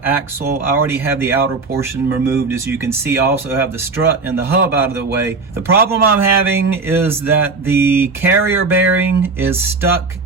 axle. I already have the outer portion removed. As you can see, I also have the strut and the hub out of the way. The problem I'm having is that the carrier bearing is stuck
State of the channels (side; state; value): left; quieter; 4.1 dB